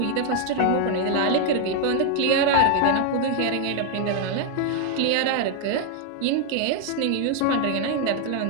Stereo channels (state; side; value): different; both; correlation 0.00